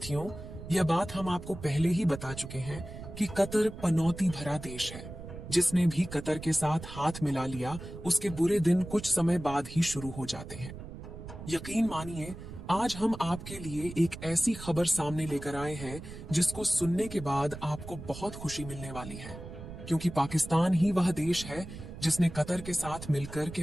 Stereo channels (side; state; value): right; noise; rumble, 12 dB below the sound